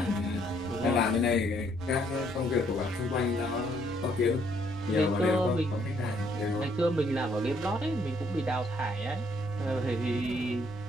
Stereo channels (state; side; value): normal; both; correlation 0.68